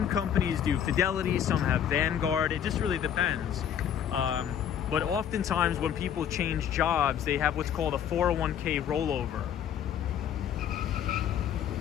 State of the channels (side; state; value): right; quieter; 9.1 dB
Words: companies do Fidelity, some have Vanguard. It just really depends. But oftentimes when people change jobs, they have what's called a 401k rollover.